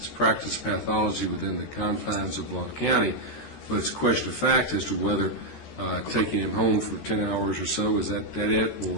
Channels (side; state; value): right; late; 13 ms